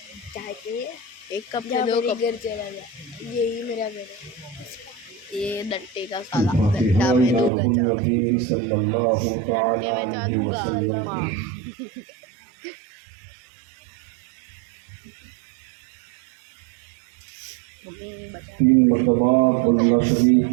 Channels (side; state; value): left; drops out; at 7.5 s